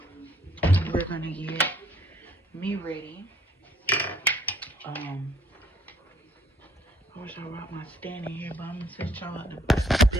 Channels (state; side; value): normal; both; correlation 0.63